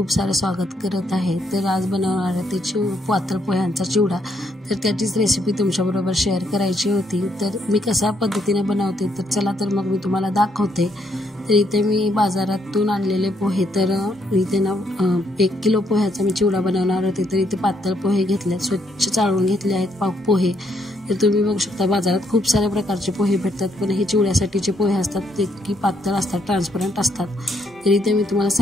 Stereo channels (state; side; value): normal; both; correlation 0.74